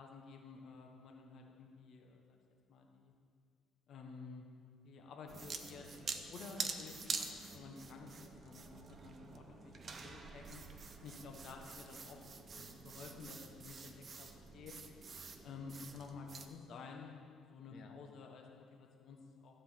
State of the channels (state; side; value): normal; both; correlation 0.73